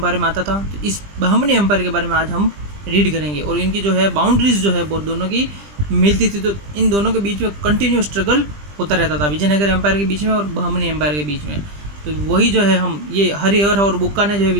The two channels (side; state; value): left; late; 20 ms